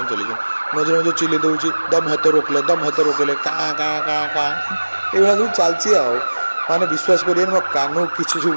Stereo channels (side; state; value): both; inverted; correlation -1.00